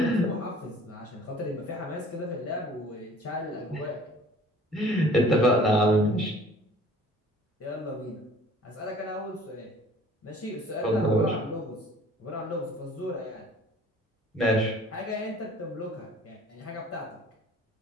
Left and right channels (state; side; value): normal; both; correlation 0.51